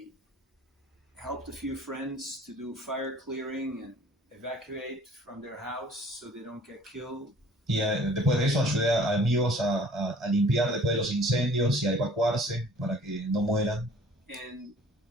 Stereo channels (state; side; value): normal; both; correlation 0.51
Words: helped a few friends to do fire clearing and evacuate from their house so they don't get killed. Y después de eso ayudé a amigos a limpiar después de los incendios y a evacuarse para que no mueran. And